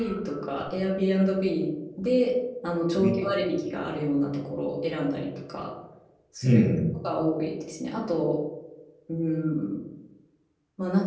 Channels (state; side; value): identical; both; correlation 1.00